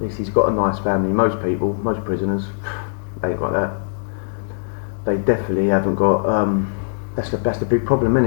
least he's got a nice family. Most prisoners, they ain't got that. They definitely haven't got. That's the big problem,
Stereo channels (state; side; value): silent; right; digital silence